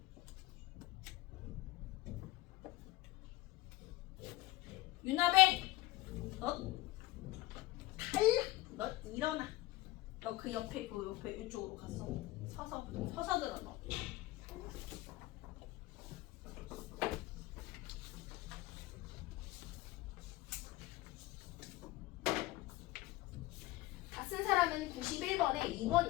윤아배, 너 탈락. 너 일어나. 너 그 옆에 이쪽으로 갔어. 서서 들어 너. 다 쓴 사람은 91번에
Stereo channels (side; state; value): right; quieter; 18.2 dB